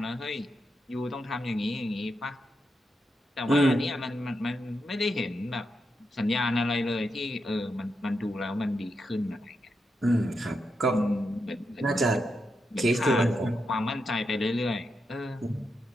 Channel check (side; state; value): both; normal; correlation 0.85